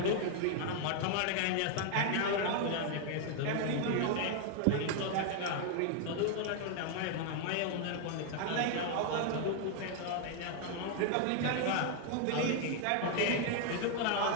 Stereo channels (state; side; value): different; both; correlation 0.00